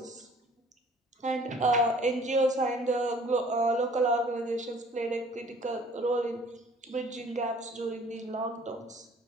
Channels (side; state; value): both; normal; correlation 0.53